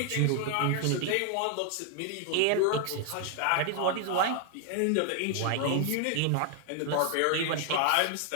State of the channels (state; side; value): different; both; correlation 0.00